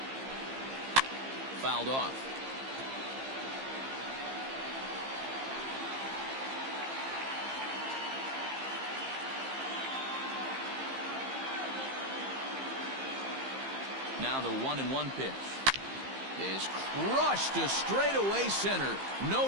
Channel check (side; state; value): left; late; 15 ms